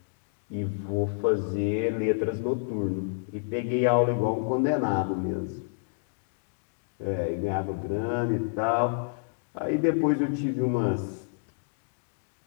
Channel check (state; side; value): silent; right; digital silence